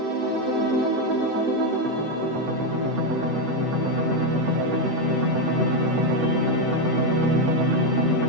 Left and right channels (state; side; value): late; left; 7.8 ms